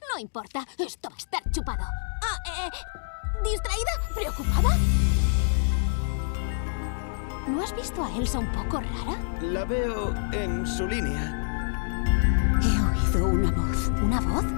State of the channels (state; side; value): silent; right; digital silence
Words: No importa, esto va a estar chupado. ¿Distraída? ¿Preocupada? ¿No has visto a Elsa un poco rara? La veo en su línea. He oído una voz. ¿Una voz?